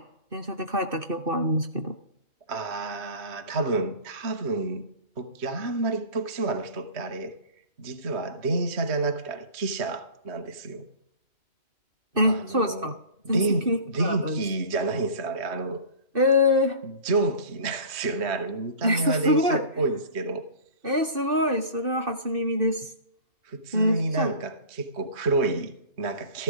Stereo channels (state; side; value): late; left; 2.6 ms